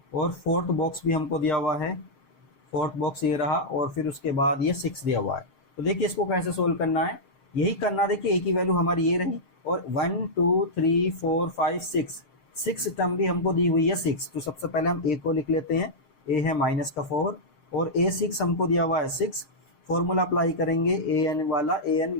और फोर्थ बॉक्स भी हमको दिया हुआ है। फोर्थ बॉक्स ये रहा, और फिर उसके बाद ये 6 दिया हुआ है। तो देखिए इसको कैसे सोल्व करना है, यही करना। देखिए ए की वैल्यू हमारी ये रही, और 1 2 3 4 5 6 टर्म भी हमको दी हुई है 6। तो सबसे पहले हम ए को लिख लेते हैं, ए है माइनस का 4, और A6 हमको दिया हुआ है 6। फॉर्मूला अप्लाई करेंगे ए एन वाला, ए एन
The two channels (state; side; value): late; right; 7.5 ms